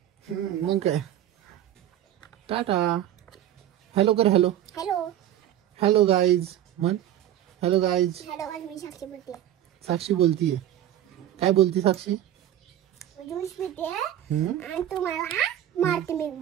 मग काय. टाटा. हॅलो कर. हॅलो हॅलो हॅलो गाईज म्हण. Hello guys. हॅलो, मी साक्षी बोलते. साक्षी बोलतीये. काय बोलती साक्षी? ज्यूस पिते हम्म? आणि तुम्हाला मारते मी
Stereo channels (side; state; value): left; quieter; 11.9 dB